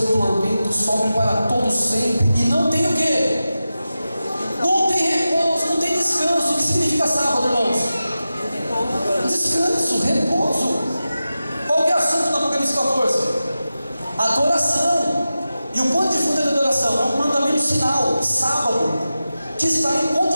tormento sobe para todo sempre, e não tem o quê? Não tem repouso, não tem descanso. O que significa sábado, irmãos? Descanso, repouso. Qual que é o assunto do Apocalipse 14? Adoração. E o ponto de fundo da adoração é um mandamento sinal, sábado, que está em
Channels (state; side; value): inverted; both; correlation -0.93